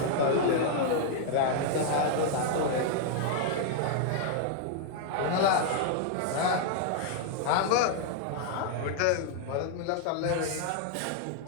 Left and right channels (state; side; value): different; both; correlation -0.01